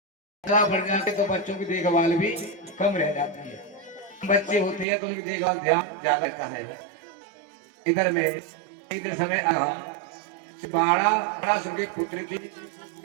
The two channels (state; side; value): drops out; left; at 4.9 s